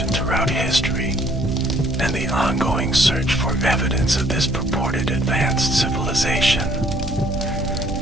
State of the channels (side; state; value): both; normal; correlation 0.61